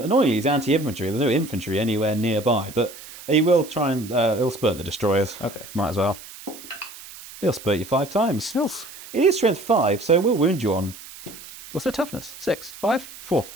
he's anti-infantry. There's no infantry anywhere nearby, but he will try and he'll spurt the destroyers. Okay. Might as well. He'll spurt you 5 times. It is strength 5, so we'll wound you on. What's their toughness? 6, 5, 4,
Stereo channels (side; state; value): right; noise; hiss, 16 dB below the sound